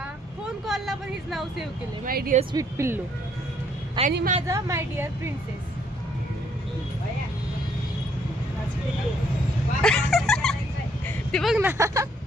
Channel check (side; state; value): both; normal; correlation 0.67